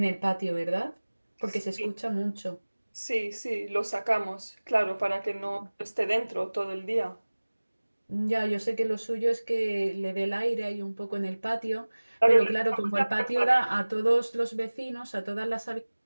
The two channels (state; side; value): inverted; both; correlation -1.00